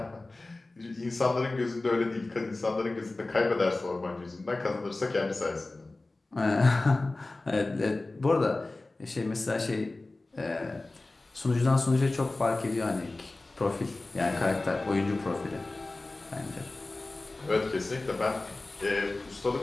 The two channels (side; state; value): right; quieter; 3.1 dB